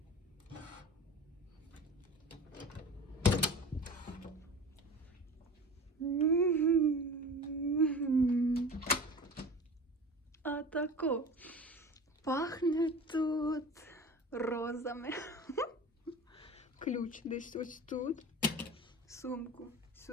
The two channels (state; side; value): normal; both; correlation 0.36